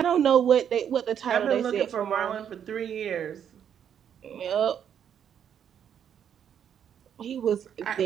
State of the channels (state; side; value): quieter; left; 8.8 dB